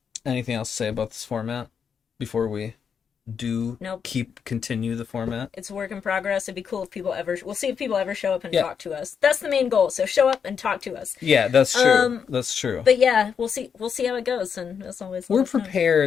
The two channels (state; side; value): quieter; right; 6.9 dB